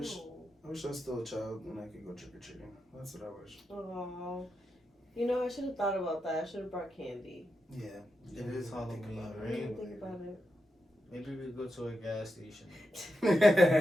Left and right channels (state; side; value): normal; both; correlation 0.87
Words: No. I wish I was still a child and I could go trick or treating. That's what I wish. Oh. You know, I should have thought about that. I should have brought candy. Yeah. It is Halloween, I right? didn't think about it. Maybe we go to a gas station.